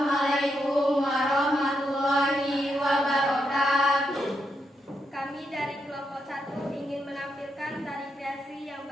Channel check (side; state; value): both; normal; correlation 0.82